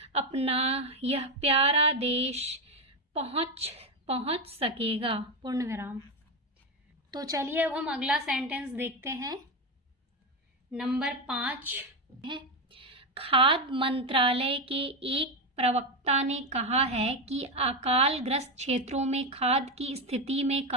अपना यह प्यारा देश पहुंच सकेगा। पूर्ण विराम। तो चलिए अब हम अगला सेंटेंस देखते हैं। नंबर 5 है, खाद्य मंत्रालय के एक प्रवक्ता ने कहा है कि अकाल ग्रस्त क्षेत्रों में खाद्य की स्थिति में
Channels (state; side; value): normal; both; correlation 0.11